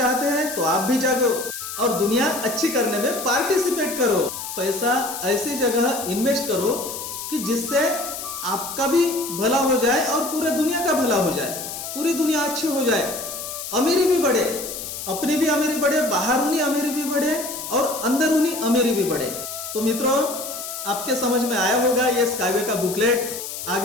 हैं तो आप भी जागो और दुनिया अच्छी करने में पार्टिसिपेट करो। पैसा ऐसी जगह इन्वेस्ट करो कि जिससे आपका भी भला हो जाए और पूरे दुनिया का भला हो जाए, पूरी दुनिया अच्छी हो जाए, अमीरी भी बढ़े, अपनी भी अमीरी बढ़े, बाहरूनी अमीरी भी बढ़े और अंदरूनी अमीरी भी बढ़े। तो मित्रों आपके समझ में आया होगा ये स्काईवे का बुकलेट।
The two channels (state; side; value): noise; left; hiss, 8 dB below the sound